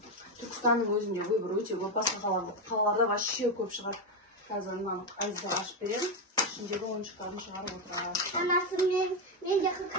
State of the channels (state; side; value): normal; both; correlation 0.08